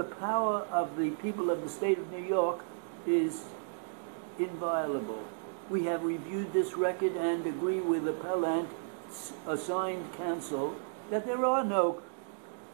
power of the people of the state of New York is inviolable. We have reviewed this record and agree with appellant's assigned counsel that there are no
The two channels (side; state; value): left; silent; digital silence